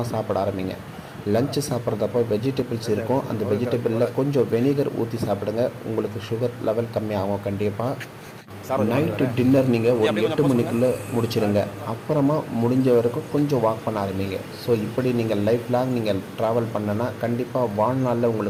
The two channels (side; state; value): both; identical; correlation 1.00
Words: சாப்பிட ஆரம்பிங்க. லஞ்சு சாப்பிட்றதப்போ வெஜிடபிள்ஸ் இருக்கும், அந்த வெஜிடபிளில் கொஞ்சம் வெனிகர் ஊற்றி சாப்பிடுங்க, உங்களுக்கு சுகர் லெவல் கம்மியாகும். கண்டிப்பாக நைட்டு டின்னர் நீங்கள் ஒரு 8 மணிக்குள்ளே முடிச்சிடுங்க, அப்புறமா முடிஞ்ச வரைக்கும் கொஞ்சம் வாக் பண்ண ஆரம்பிங்க. ஸோ இப்படி நீங்கள் லைஃப் லாங் நீங்கள் ட்ராவல் பண்ணனா கண்டிப்பாக வாழ்நாளில்